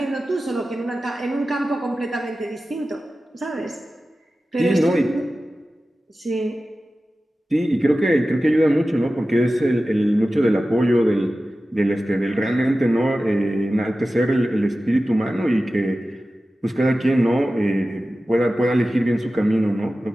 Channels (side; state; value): both; normal; correlation 0.95